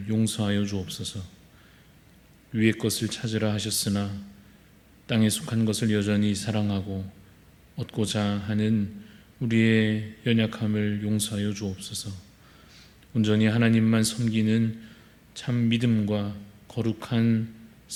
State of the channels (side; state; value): both; identical; correlation 1.00